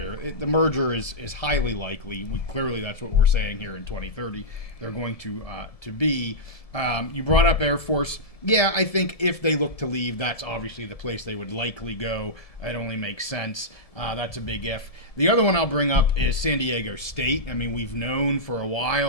The merger is highly likely. Clearly, that's what we're saying here in 2030. They're going to be. You brought up Air Force. Yeah, I think if they look to leave, that's obviously the place they would likely go. It only makes sense. That's a big if. The other one I'll bring up is San Diego State. I mean, we've known for a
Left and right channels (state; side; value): late; right; 1.7 ms